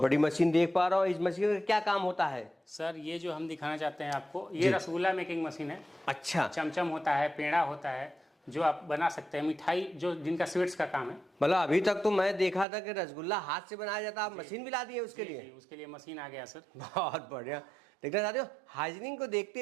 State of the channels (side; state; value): left; drops out; at 12.7 s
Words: मशीन देख पा रहा हूँ। इस मशीन का क्या काम होता है? सर ये जो हम दिखाना चाहते हैं आपको, ये रसगुल्ला मेकिंग मशीन है। अच्छा। चमचम होता है, पेड़ा होता है, जो आप बना सकते हैं। मिठाई जो जिनका स्वीट्स का काम है। मतलब अभी तक तो मैं देखा था कि रसगुल्ला हाथ से बनाया जाता, आप मशीन भी ला दी है उसके लिए? उसके लिए मशीन आ गया सर। बहुत बढ़िया। देखना चाहते हो, हाइजीनिंग को